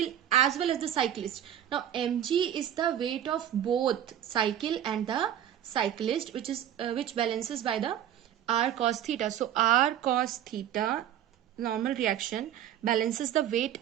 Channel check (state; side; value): quieter; left; 10.6 dB